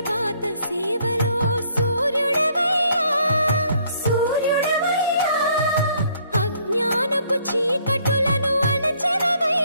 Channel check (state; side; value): inverted; both; correlation -0.65